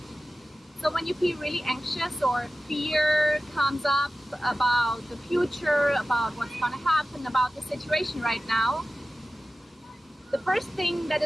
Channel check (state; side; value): normal; both; correlation 0.95